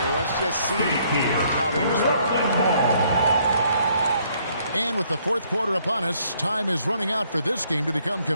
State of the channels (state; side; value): inverted; both; correlation -0.66